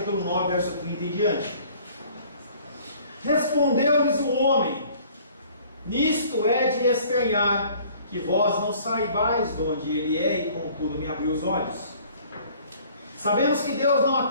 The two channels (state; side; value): inverted; both; correlation -0.54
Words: 9, verso 30 em diante. Respondeu-lhes o homem: nisto é de estranhar, que vós não saibais de onde ele é, e contudo me abriu os olhos. Sabemos que Deus não